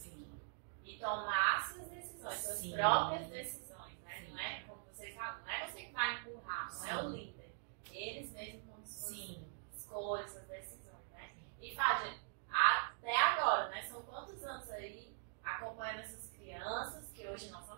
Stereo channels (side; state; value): left; silent; digital silence